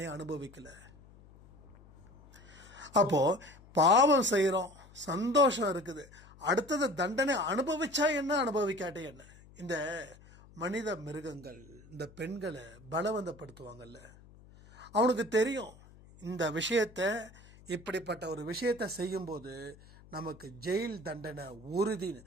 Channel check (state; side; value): noise; left; hum, 23 dB below the sound